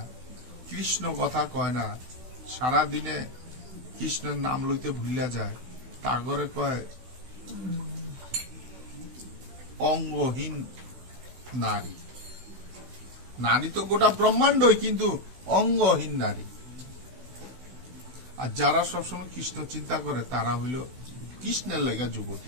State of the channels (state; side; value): late; left; 16 ms